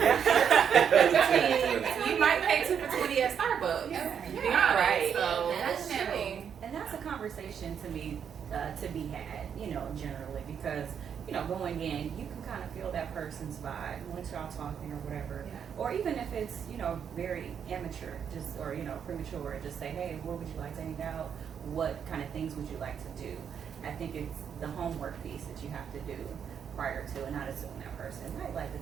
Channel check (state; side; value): quieter; left; 7.8 dB